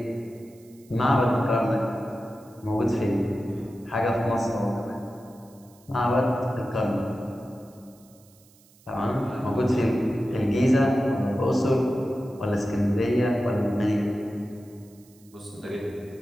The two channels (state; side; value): noise; right; hiss, 28 dB below the sound